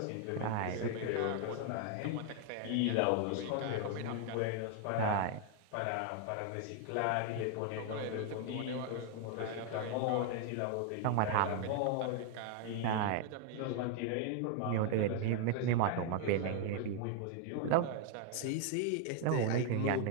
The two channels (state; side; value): different; both; correlation 0.00